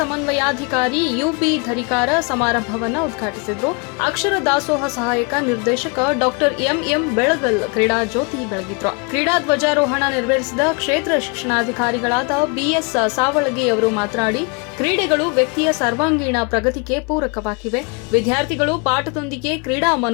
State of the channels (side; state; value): right; quieter; 33.1 dB